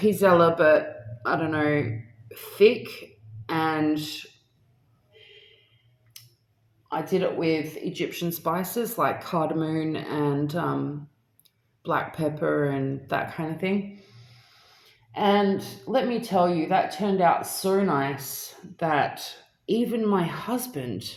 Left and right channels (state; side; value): identical; both; correlation 1.00